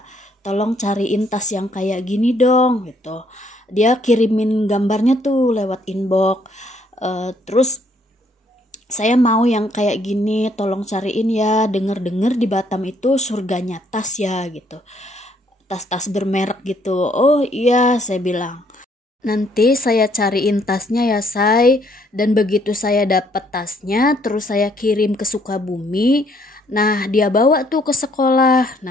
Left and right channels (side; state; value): both; normal; correlation 0.67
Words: Tolong cariin tas yang kayak gini dong gitu. Dia kirimin gambarnya tuh lewat inbox. Terus saya mau yang kayak gini, tolong cariin ya. Dengar-dengar di Batam itu surganya tas ya gitu. Tas-tas bermerek gitu. Oh iya, saya bilang. Nanti saya cariin tasnya ya say. Dan begitu saya dapat tasnya, terus saya kirim ke Sukabumi. Nah, dia bawa tuh ke sekolah.